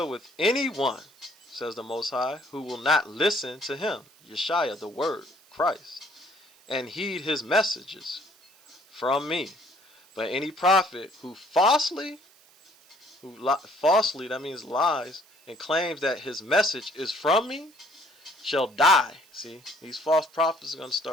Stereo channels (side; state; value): right; noise; hiss, 28 dB below the sound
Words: with anyone, says the Most High, who will not listen to him, Yeshaya, the Word, Christ, and heed his messages from me. But any prophet who falsely, that means lies, and claims that his message is from me, shall die. See, these false prophets are going to